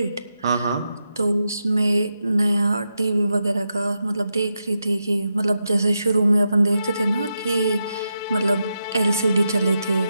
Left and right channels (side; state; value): both; inverted; correlation -0.86